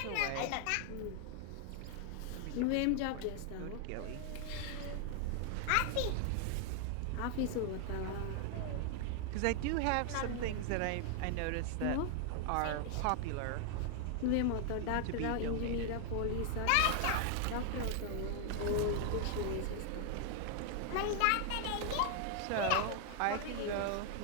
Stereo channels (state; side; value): different; both; correlation 0.00